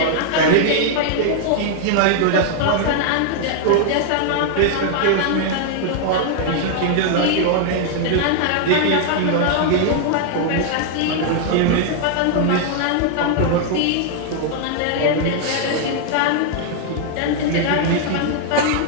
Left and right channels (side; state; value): both; different; correlation 0.00